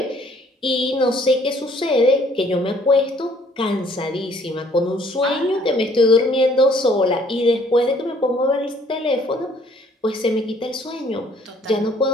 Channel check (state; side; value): normal; both; correlation 0.60